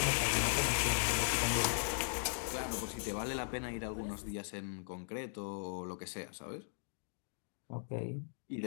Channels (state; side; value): silent; right; digital silence